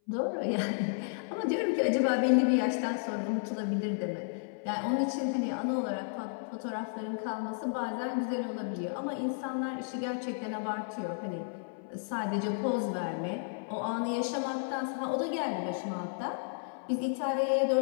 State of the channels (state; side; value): silent; right; 56 dB below the other